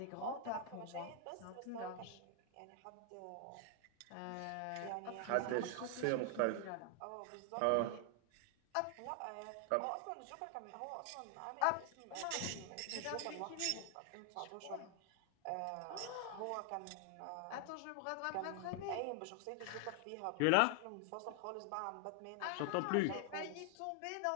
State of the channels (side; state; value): both; different; correlation 0.00